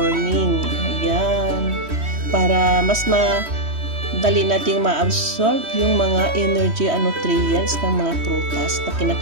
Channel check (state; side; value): late; left; 3.1 ms